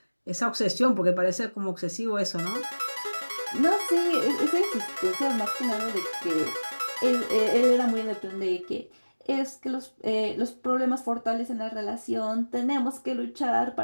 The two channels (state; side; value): inverted; both; correlation -1.00